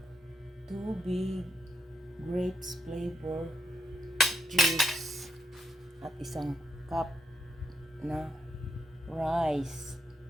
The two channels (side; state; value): both; normal; correlation 0.80